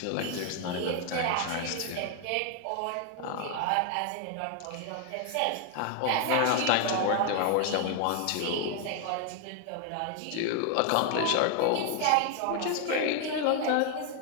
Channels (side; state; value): both; different; correlation 0.00